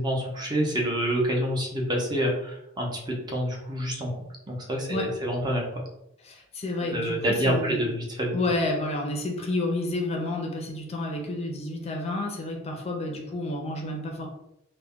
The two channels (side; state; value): both; normal; correlation 0.48